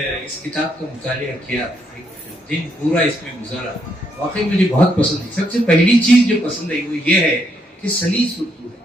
اس کتاب کا مطالعہ کیا, ایک دن پورا اس میں گزارا. واقعی مجھے بہت پسند ہے. سب سے پہلی چیز جو پسند ہے وہ یہ ہے کہ سلیس اردو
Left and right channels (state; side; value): normal; both; correlation 0.75